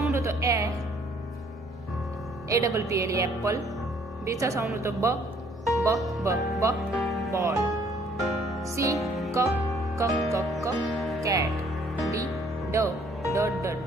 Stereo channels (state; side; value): normal; both; correlation 0.62